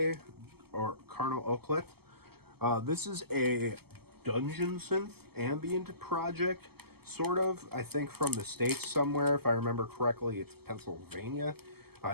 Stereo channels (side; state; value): left; late; 0.96 ms